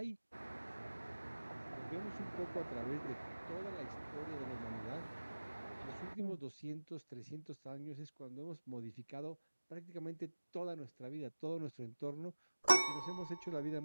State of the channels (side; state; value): both; inverted; correlation -1.00